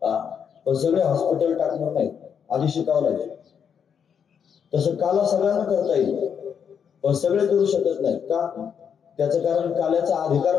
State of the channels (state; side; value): quieter; right; 7.4 dB